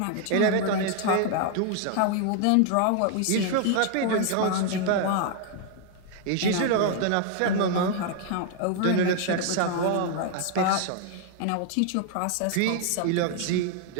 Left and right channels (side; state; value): both; different; correlation 0.00